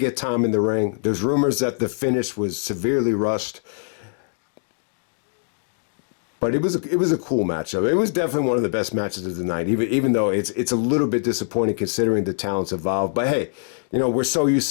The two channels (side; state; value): right; silent; digital silence